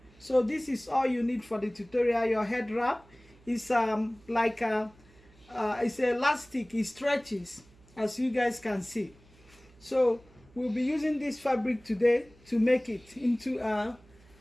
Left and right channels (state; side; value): noise; right; hum, 27 dB below the sound